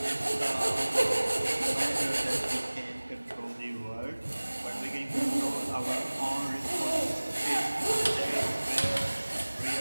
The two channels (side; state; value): both; inverted; correlation -1.00